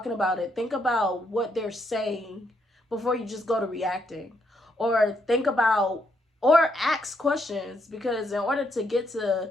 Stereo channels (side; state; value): both; normal; correlation 0.76